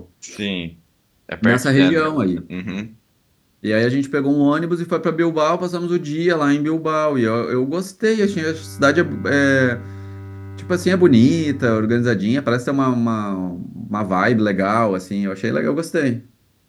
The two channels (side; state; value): both; identical; correlation 1.00